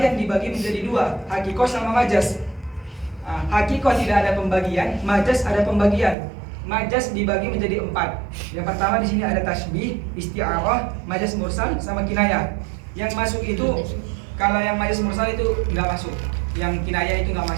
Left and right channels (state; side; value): drops out; left; at 6.2 s